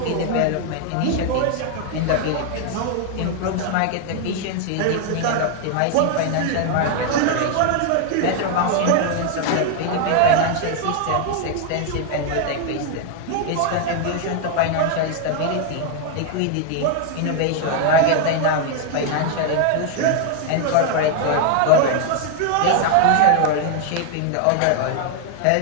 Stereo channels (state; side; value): different; both; correlation 0.00